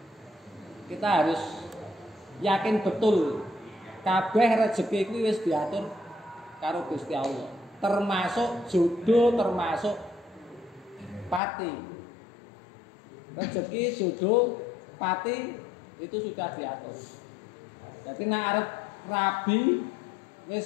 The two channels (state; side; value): drops out; right; at 11.4 s